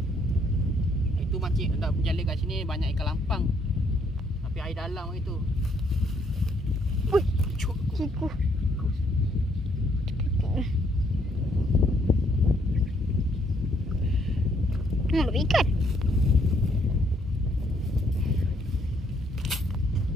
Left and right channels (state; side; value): normal; both; correlation 0.69